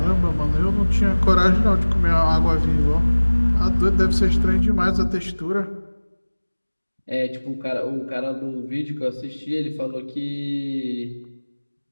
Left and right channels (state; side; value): inverted; both; correlation -1.00